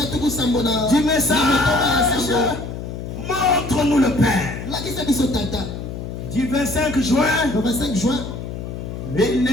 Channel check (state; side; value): noise; left; hum, 8 dB below the sound